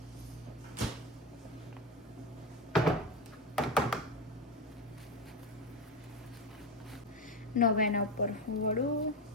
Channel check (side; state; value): both; normal; correlation 0.15